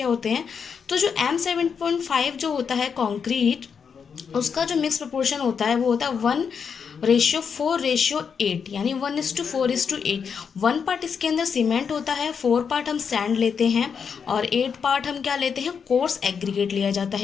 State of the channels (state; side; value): quieter; right; 6.5 dB